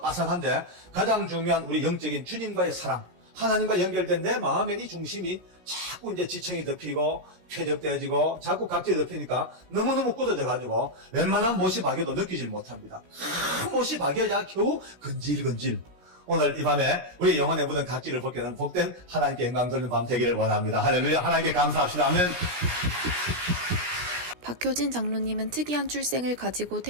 빠삭한데 가장 중요한 우리 영적인 주님과의 사랑, 하나님과 연결된 내 마음의 이 중심이 자꾸 이제 지청이 덮이고 쾌적되어지고 자꾸 각질이 덮이니까 너무너무 굳어져 가지고 웬만한 못이 박여도 느끼질 못합니다. 큰 못이 박여야 겨우 근질근질. 오늘 이 밤에 우리 영혼에 묻은 각질을 벗게 하는 복된 하나님께 영광 돌리는 밤 되기를 원합니다. 할렐루야. 하나님께 감사합시다. 아멘. 박효진 장로님은 특이한 출생을 가지고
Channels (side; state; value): left; late; 17 ms